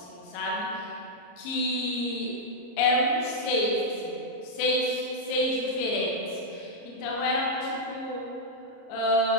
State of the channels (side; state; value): right; late; 34 ms